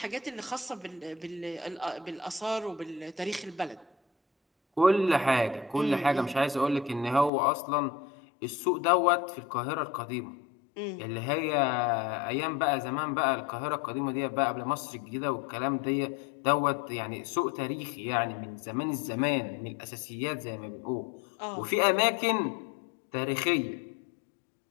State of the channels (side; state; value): right; drops out; at 7.3 s